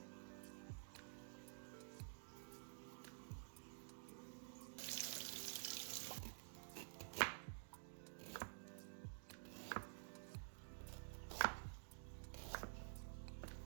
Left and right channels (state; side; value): silent; left; digital silence